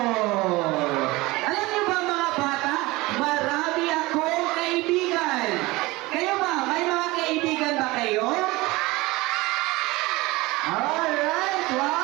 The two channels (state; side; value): quieter; left; 21.3 dB